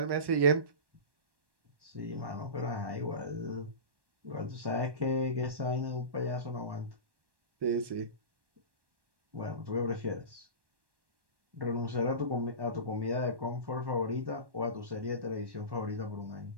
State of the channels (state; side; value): late; left; 1.1 ms